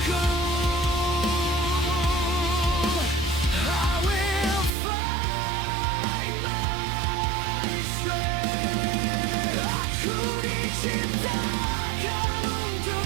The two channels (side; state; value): left; drops out; at 4.7 s